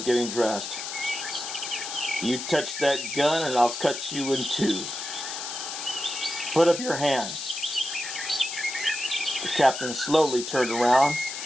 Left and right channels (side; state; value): left; noise; hiss, 6 dB below the sound